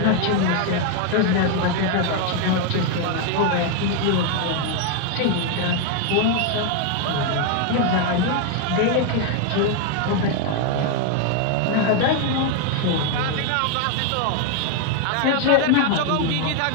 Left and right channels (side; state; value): both; different; correlation 0.01